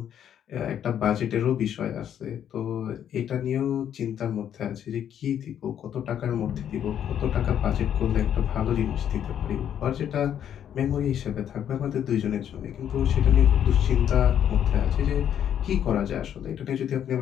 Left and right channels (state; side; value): quieter; right; 9.6 dB